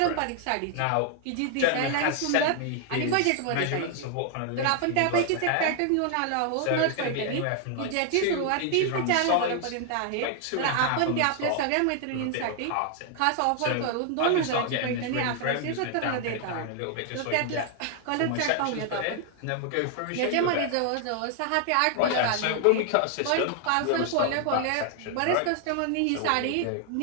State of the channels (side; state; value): both; different; correlation 0.00